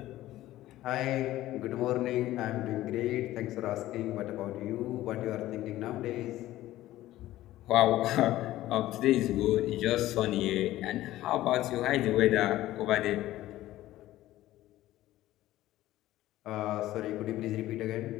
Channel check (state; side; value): quieter; right; 15.2 dB